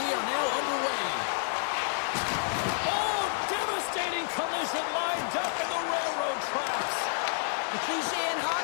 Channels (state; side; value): silent; right; digital silence